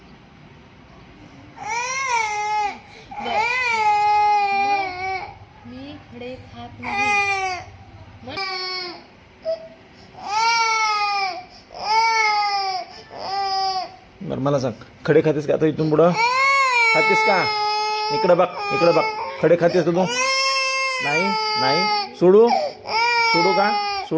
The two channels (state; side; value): identical; both; correlation 1.00